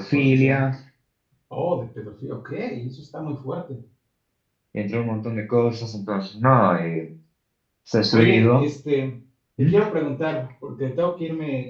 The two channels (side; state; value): both; identical; correlation 1.00